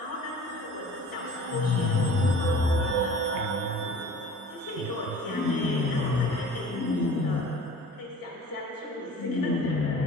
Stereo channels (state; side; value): normal; both; correlation 0.44